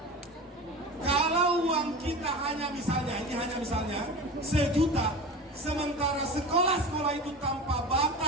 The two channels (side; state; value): both; normal; correlation 0.31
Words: Kalau uang kita hanya misalnya, ini hanya misalnya 1 juta, sementara sekolah-sekolah itu tanpa